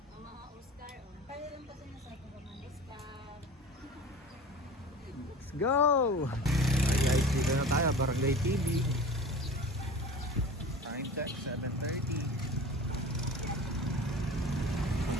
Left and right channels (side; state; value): both; normal; correlation 0.37